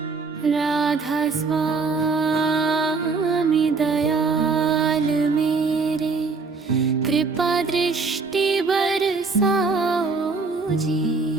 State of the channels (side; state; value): left; quieter; 4.3 dB